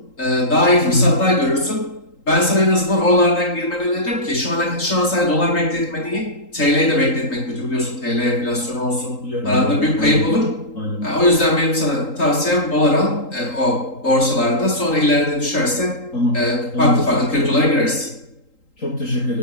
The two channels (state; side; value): late; right; 3.8 ms